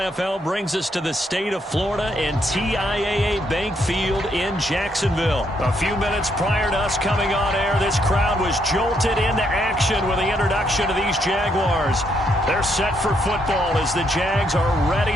brings us to the state of Florida and TIAA Bank Field in Jacksonville. A few minutes prior to us coming on air, this crowd was jolted into action with the introduction of these Jaguars. They're set for football as the Jags are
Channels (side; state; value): both; normal; correlation 0.75